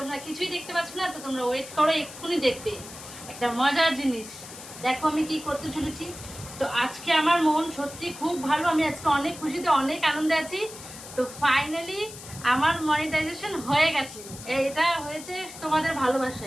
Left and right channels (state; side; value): noise; left; hiss, 14 dB below the sound